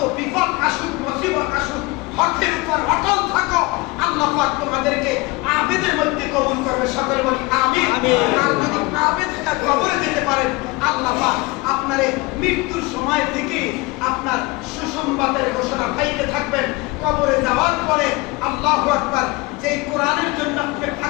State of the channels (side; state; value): right; quieter; 23.7 dB